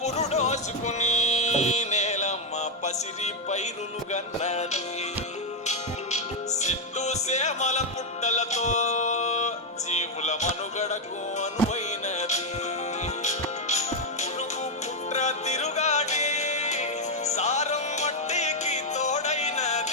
నేలమ్మ పసిరి పైరులు గన్నది, సిట్టు సేమల పుట్టలతో జీవుల మనుగడకు అనువైనది. పురుగు పుట్ర తిరుగాడి సారం మట్టికి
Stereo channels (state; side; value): normal; both; correlation 0.02